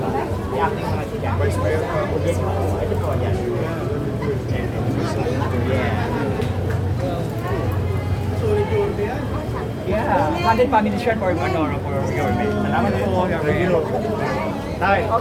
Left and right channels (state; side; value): identical; both; correlation 1.00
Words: Vice Mayor pa ako dito. Yeah, candid family shirt for Manoro for your mate. Salamat po. Tay.